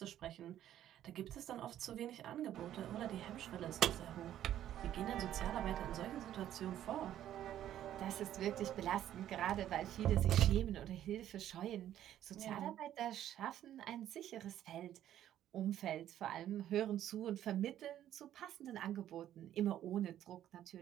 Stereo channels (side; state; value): left; quieter; 11.7 dB